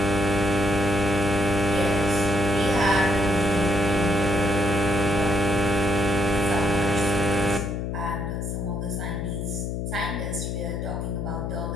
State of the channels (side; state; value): left; noise; hum, 3 dB below the sound